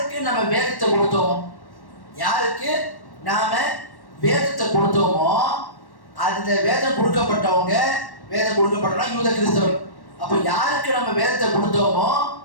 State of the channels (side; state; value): right; late; 1.1 ms